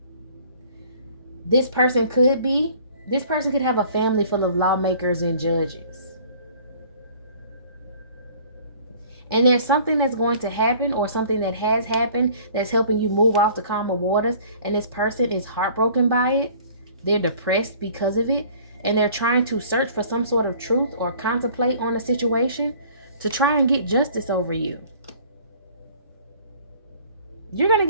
This person could have a family full of lawmakers and judges. And there's something that's going to happen, or something that has happened, that's helping you move off the calmer waters. And this person is heartbroken by it. They're depressed because of it. And they're trying to search for some sort of truth or contemplate on a situation to try and get justice over you. You're going to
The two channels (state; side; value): inverted; both; correlation -0.52